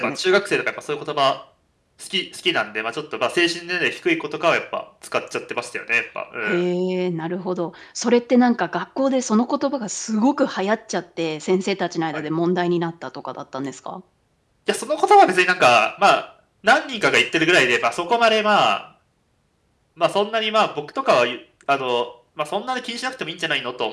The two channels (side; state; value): both; identical; correlation 1.00